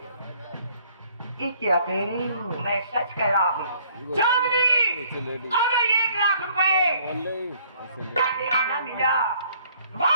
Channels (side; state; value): both; inverted; correlation -0.61